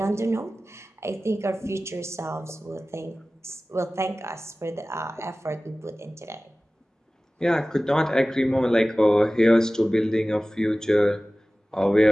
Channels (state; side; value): normal; both; correlation 0.97